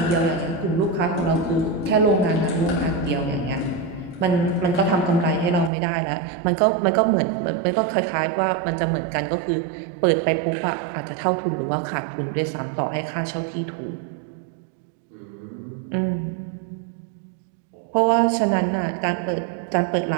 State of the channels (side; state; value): left; drops out; at 5.7 s